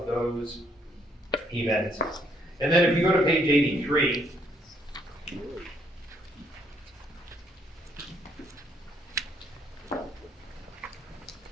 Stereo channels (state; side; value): normal; both; correlation 0.69